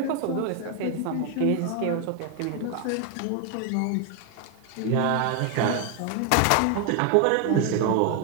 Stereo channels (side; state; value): both; different; correlation 0.01